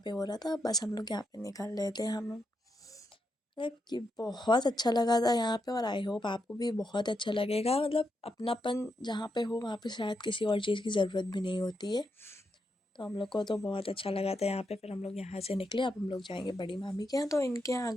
पे हो रहा था, बस हम लोग यहाँ पे निकल रहे थे। हम मतलब कि बहुत अच्छा लगा था यहाँ पे, और आई होप आपको भी बहुत अच्छा लगेगा। मतलब अपनापन जहाँ पे हो वहाँ पे शायद किसी और चीज़ की ज़रूरत भी नहीं होती है। तो हम लोग को तो बहुत अच्छा लगा था यहाँ पे। फिर हम लोग यहाँ से निकले, अब हम लोग जाएंगे बड़ी मामी के यहाँ। तो इनके यहाँ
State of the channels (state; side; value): normal; both; correlation 0.83